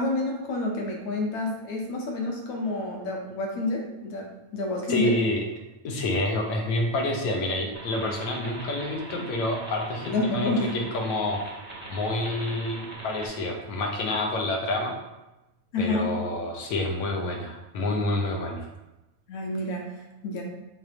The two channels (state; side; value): late; right; 9.0 ms